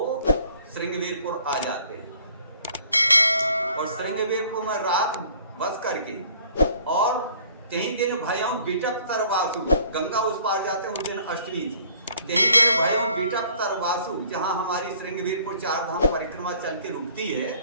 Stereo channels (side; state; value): both; inverted; correlation -0.57